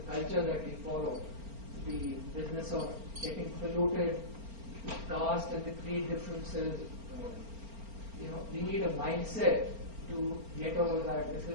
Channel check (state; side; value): late; left; 4.4 ms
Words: culture that we follow? The business of getting polluted, the caste and the creed differences. We need a mindset to get over that. This